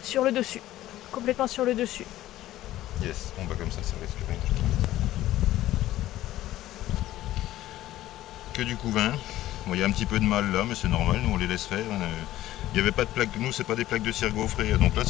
sur le dessus. Complètement sur le dessus. Yes, bon bah comme ça risque rien. Que du couvain. Bon, il y a un petit peu de mal là, mais c'est normal, nous on les laisse faire. Il n'y avait pas de plaques, nous c'est pas des plaques de cire gaufrée, donc là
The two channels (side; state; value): right; quieter; 14.7 dB